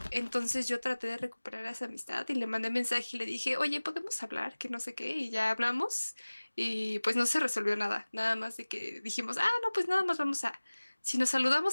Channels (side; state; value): both; inverted; correlation -1.00